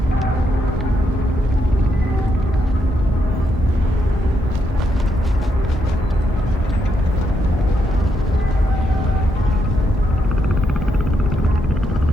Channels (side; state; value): both; normal; correlation 0.79